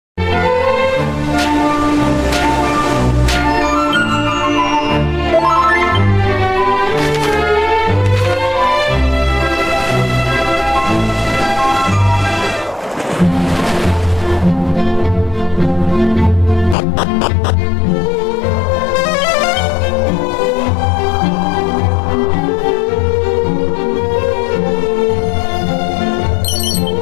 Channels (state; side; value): drops out; right; at 16.8 s